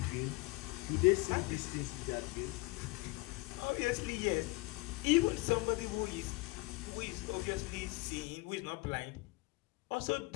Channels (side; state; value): right; quieter; 23.4 dB